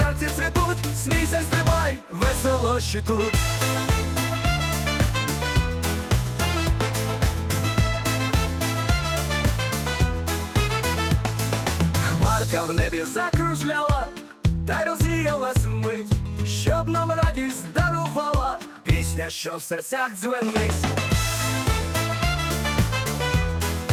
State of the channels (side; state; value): both; identical; correlation 1.00